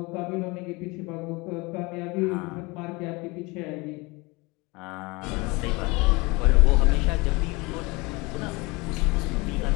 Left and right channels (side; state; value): right; quieter; 25.2 dB